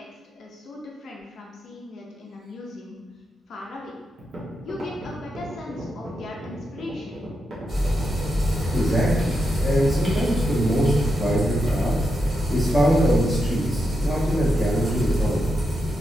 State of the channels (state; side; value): normal; both; correlation 0.85